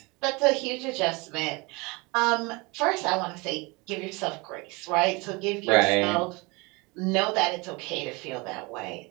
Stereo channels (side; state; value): left; quieter; 26.4 dB